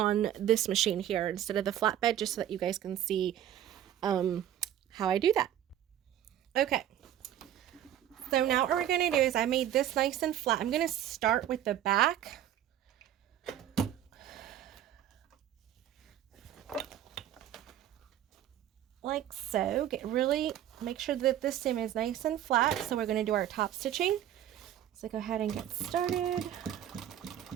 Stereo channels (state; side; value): quieter; left; 11.3 dB